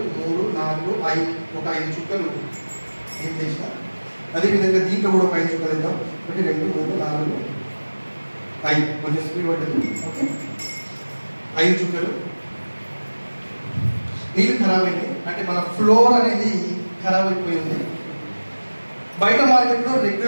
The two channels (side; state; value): both; inverted; correlation -1.00